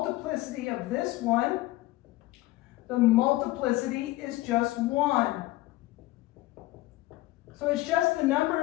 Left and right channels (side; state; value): right; quieter; 18.0 dB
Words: of this one, the multiplicity is just 1. So it's just the number